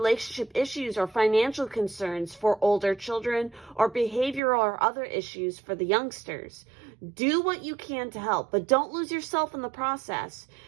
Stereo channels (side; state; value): left; drops out; at 4.4 s